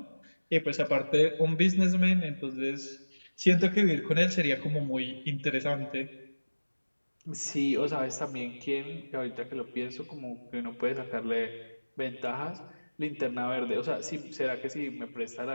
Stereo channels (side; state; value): both; inverted; correlation -1.00